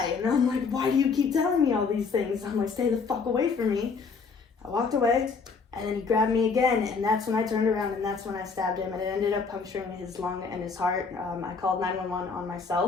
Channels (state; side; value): quieter; right; 5.0 dB